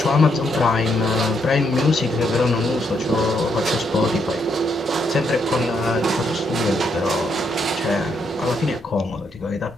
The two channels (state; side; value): normal; both; correlation 0.76